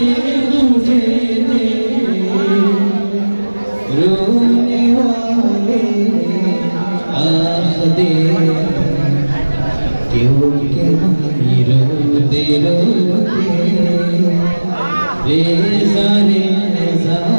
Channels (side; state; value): both; inverted; correlation -1.00